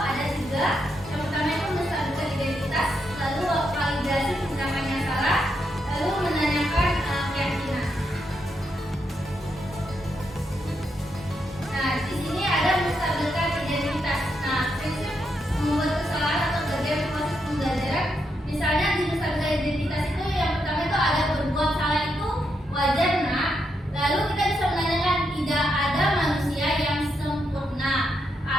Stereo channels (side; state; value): both; normal; correlation 0.81